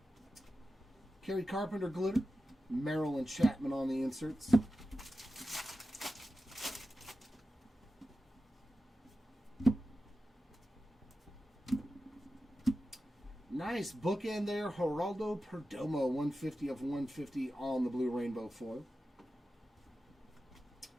Kerry Carpenter glitter. Merrill and Chapman on the inserts. Nice bookend there. Geraldo Perdomo, 150 of 150 on the blue rainbow foil.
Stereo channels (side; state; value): both; normal; correlation 0.93